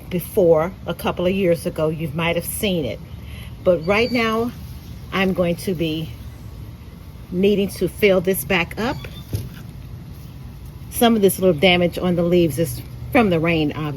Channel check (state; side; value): identical; both; correlation 1.00